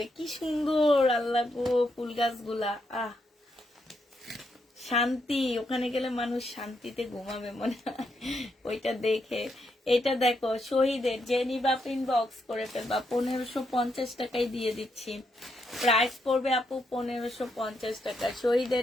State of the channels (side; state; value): both; normal; correlation 0.79